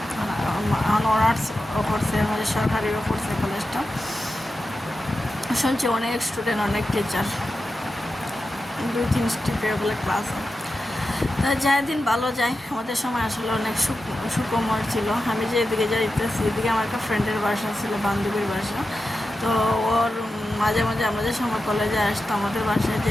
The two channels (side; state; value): both; normal; correlation 0.91